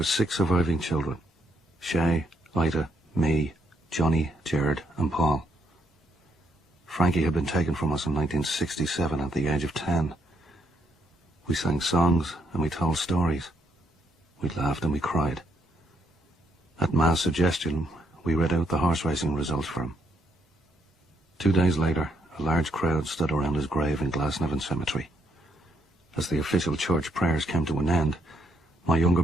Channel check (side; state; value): both; normal; correlation 0.77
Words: 6 surviving children: Shay, Ida, me, Johnny, Gerard and Paul. Frankie had been taken from us in 1967 at the age of 10. We sang songs and we told stories. We laughed and we cried. At Ma's suggestion, we read out the horse racing results for him. 2 days later, a large crowd stood around his grave in Glasnevin Cemetery. As the official church prayers came to an end, my younger